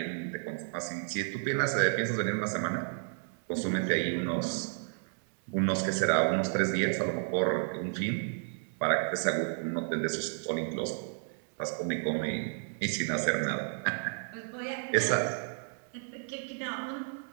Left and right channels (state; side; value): silent; left; 56 dB below the other